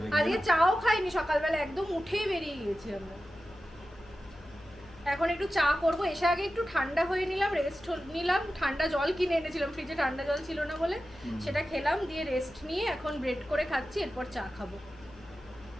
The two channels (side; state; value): left; noise; hum, 23 dB below the sound